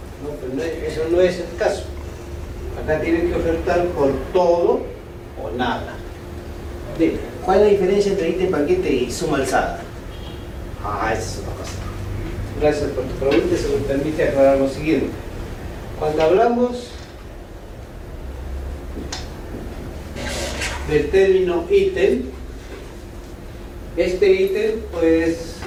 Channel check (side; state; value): both; identical; correlation 1.00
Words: No, pero eso no es el caso. Acá tienen que ofertar por todo o nada. ¿Cuál es la diferencia entre ítem paquete y suma alzada? Esa es otra cosa. Gracias por tu pregunta, se me permite aclarar lo siguiente. Cuando hablamos del término ítem, este ítem, pues,